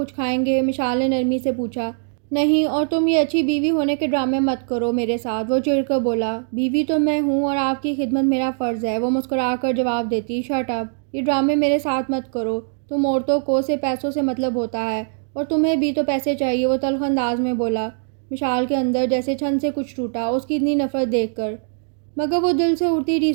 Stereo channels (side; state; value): left; silent; digital silence